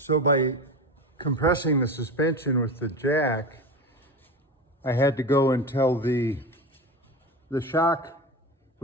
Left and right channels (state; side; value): normal; both; correlation 0.26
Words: by compressing the suspension with the jack, I had to go until the shock